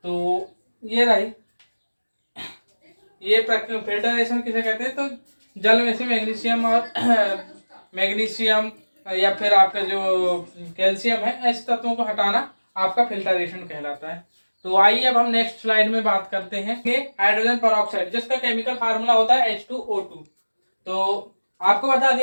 तो ये रही, ये फिल्टरेशन किसे कहते हैं? तो जल में से मैग्नीशियम और मैग्नीशियम या फिर आपका जो कैल्शियम है, ऐसे तत्वों को हटाना आपका फिल्टरेशन कहलाता है। तो आइए अब हम नेक्स्ट स्लाइड में बात करते हैं कि हाइड्रोजन परऑक्साइड, जिसका केमिकल फार्मूला होता है H2O2। तो आपको बता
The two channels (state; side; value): inverted; both; correlation -1.00